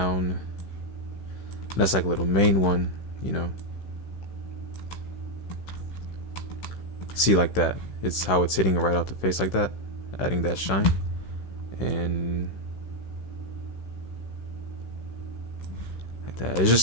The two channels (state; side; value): late; right; 16 ms